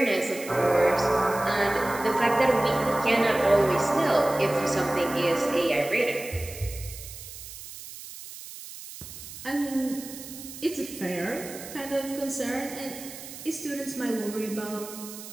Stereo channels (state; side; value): noise; right; hiss, 13 dB below the sound